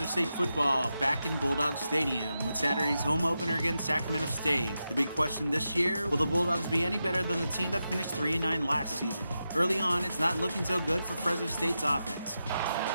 State football back in Bulldog Stadium with Saturday's home opener against Sacramento State. The big question this year, will the Bulldogs be any better than the team that finished 3-9 last season? Early on, it's not looking so good for Fresno State's offense.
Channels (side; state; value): both; inverted; correlation -0.89